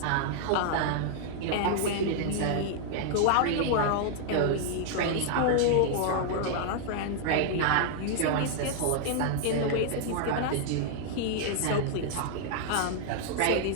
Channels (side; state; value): both; different; correlation -0.01